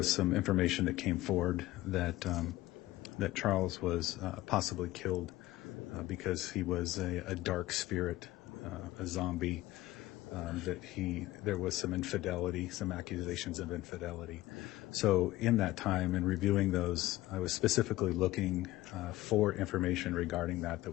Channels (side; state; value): right; quieter; 17.2 dB